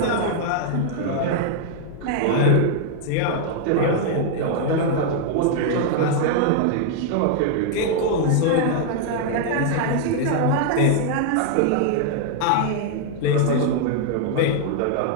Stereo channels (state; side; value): different; both; correlation 0.00